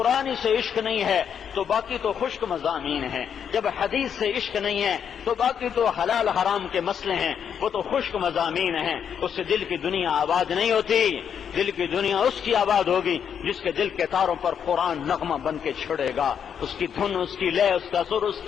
سے عشق نہیں ہے تو باقی تو خشک مضامین ہیں, جب حدیث سے عشق نہیں ہے تو باقی تو حلال حرام کے مسئلے ہیں, وہ تو خشک مضامین ہیں. اس سے دل کی دنیا آباد نہیں ہوتی. دل کی دنیا اس کی آباد ہوگی جس کے دل کے تاروں پر قرآن نغمہ بن کے چھڑے گا, اس کی دھن, اس کی لے, اس کا سر, اس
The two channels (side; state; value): right; quieter; 7.9 dB